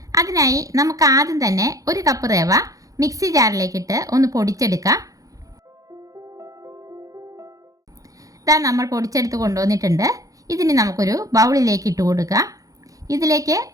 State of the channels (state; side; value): late; left; 0.17 ms